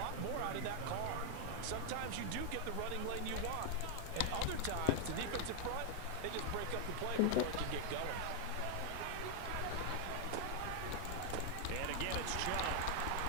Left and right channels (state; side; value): different; both; correlation 0.00